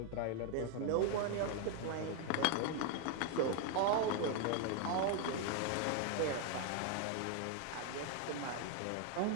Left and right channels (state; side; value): different; both; correlation 0.00